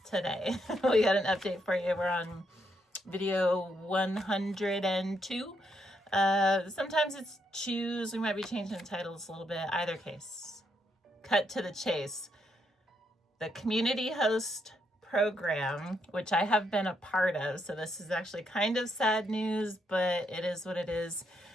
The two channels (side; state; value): both; normal; correlation 0.77